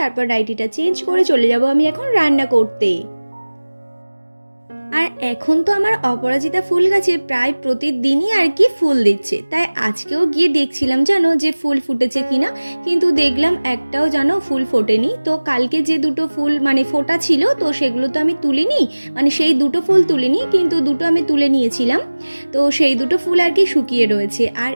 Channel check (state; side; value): inverted; both; correlation -1.00